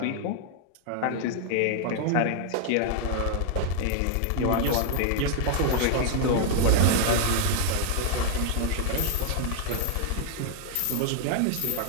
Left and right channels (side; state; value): both; different; correlation 0.00